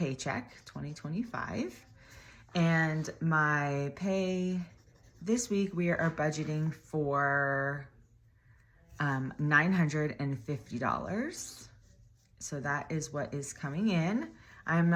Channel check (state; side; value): identical; both; correlation 1.00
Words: 2025. And my pay this week, we are budgeting for $950. So that is what is coming in. I'm